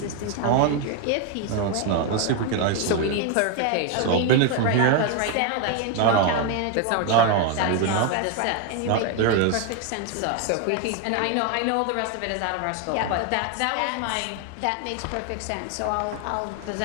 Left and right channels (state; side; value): different; both; correlation 0.01